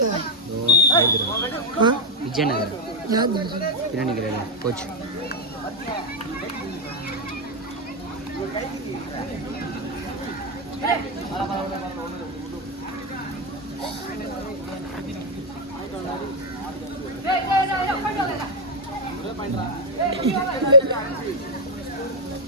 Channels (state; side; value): normal; both; correlation 0.01